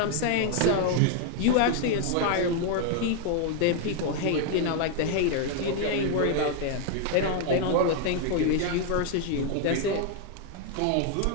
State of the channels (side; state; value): both; different; correlation 0.00